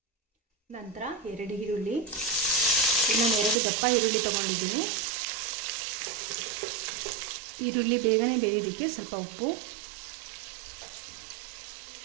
ನಂತರ 2 ಈರುಳ್ಳಿ, ಇನ್ನೊಂದು 2 ದಪ್ಪ ಈರುಳ್ಳಿ ತಗೊಂಡಿದ್ದೀನಿ. ಈರುಳ್ಳಿ ಬೇಗನೆ ಬೇಯೋದಕ್ಕೆ ಸ್ವಲ್ಪ ಉಪ್ಪು,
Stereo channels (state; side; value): drops out; left; at 3.6 s